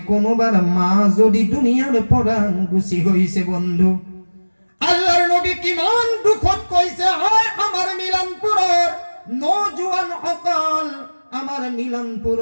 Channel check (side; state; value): both; inverted; correlation -1.00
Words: কোনোবার মা যদি দুনিয়ার পৰা গুছি হইছে বন্ধু আল্লাহর নবী কিমান দুখত কইছে হয় আমার মিলানপুৰৰ নজওয়ান সকল আমার